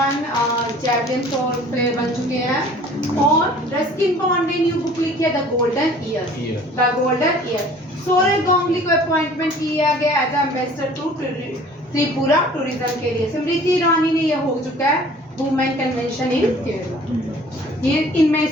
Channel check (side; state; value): both; normal; correlation 0.50